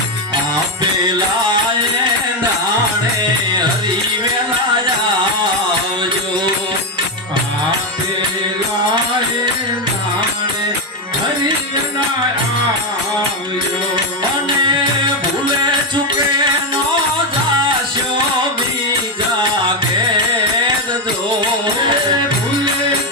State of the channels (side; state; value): both; normal; correlation 0.09